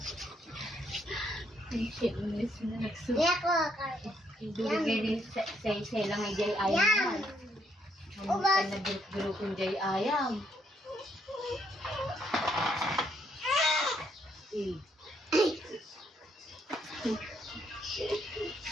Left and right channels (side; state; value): both; normal; correlation 0.73